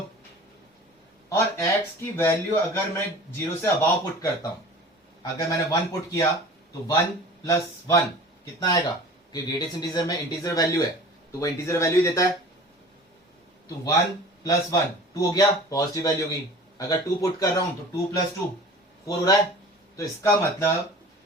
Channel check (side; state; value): both; normal; correlation 0.42